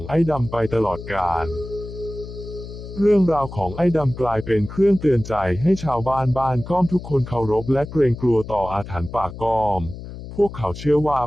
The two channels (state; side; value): noise; left; hum, 12 dB below the sound